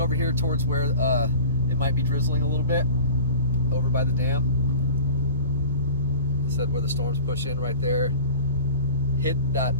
here towards where it might be drizzling a little bit over by the dam. I said where the storms push in right there, hit that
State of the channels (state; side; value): inverted; both; correlation -0.39